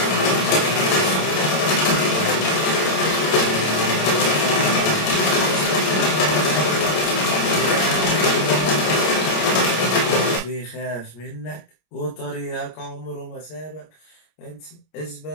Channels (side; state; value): right; late; 25 ms